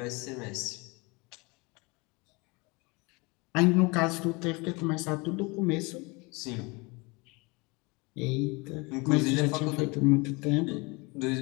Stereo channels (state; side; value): quieter; right; 27.0 dB